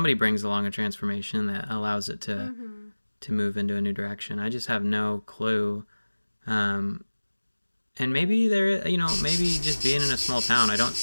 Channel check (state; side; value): inverted; both; correlation -1.00